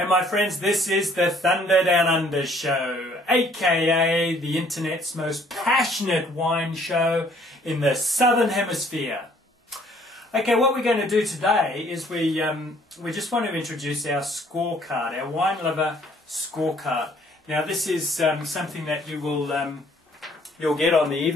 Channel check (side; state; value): both; normal; correlation 0.60